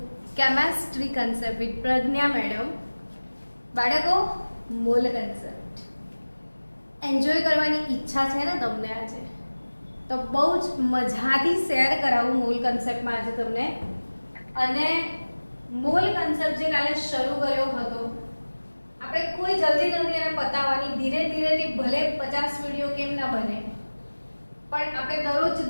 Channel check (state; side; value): inverted; both; correlation -1.00